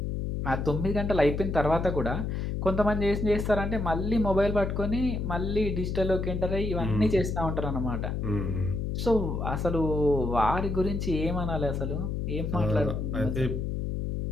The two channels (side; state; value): left; noise; hum, 2 dB below the sound